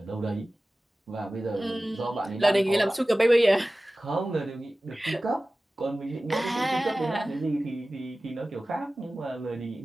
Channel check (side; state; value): both; normal; correlation 0.96